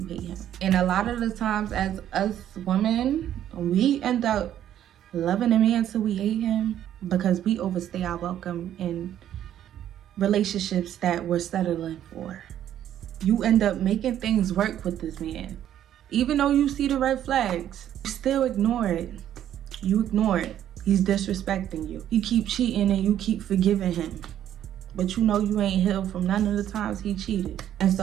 hate him. And a lot of the times as us women, we end up loving a man till we hate him because we overstay our welcome in relationships that we're settling for. You end up making things work with this man. Even though you see the red flags, you still ignore it. You ignore it. He's disrespecting you. You keep cheating and you keep forgiving him. But you know you ain't healed from none of the times he cheated. And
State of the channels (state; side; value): quieter; left; 11.0 dB